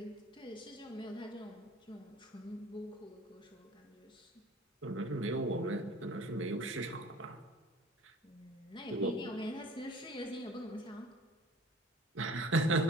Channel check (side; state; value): both; normal; correlation 0.46